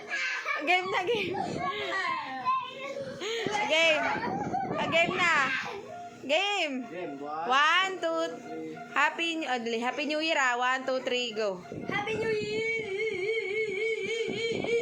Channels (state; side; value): identical; both; correlation 1.00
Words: Game na, game. Game. Game na. Game. 1, 2. Happy New Year 1, 2, 3, go. Happy New Year.